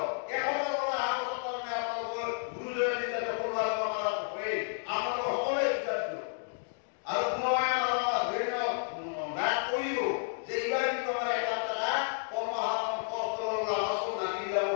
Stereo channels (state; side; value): silent; right; digital silence